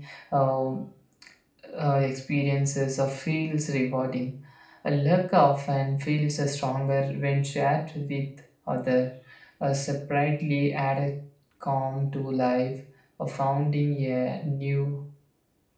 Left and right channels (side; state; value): both; identical; correlation 1.00